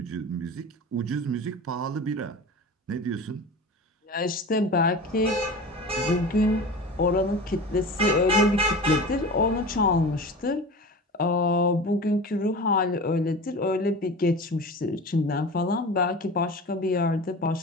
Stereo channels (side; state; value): both; normal; correlation 0.33